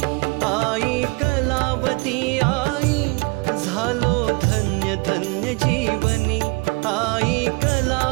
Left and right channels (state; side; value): quieter; left; 28.1 dB